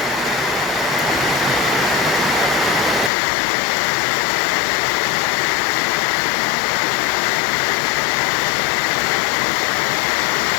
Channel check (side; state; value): right; drops out; at 3.1 s